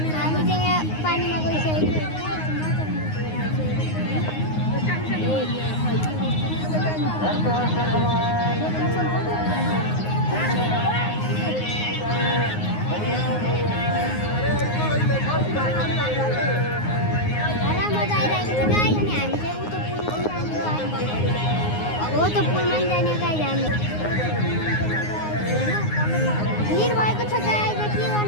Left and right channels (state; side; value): late; right; 9.6 ms